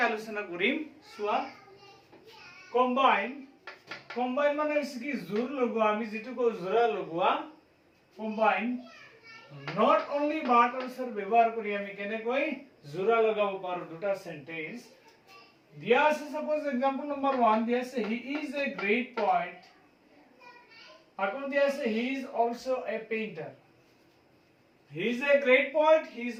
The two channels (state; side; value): identical; both; correlation 1.00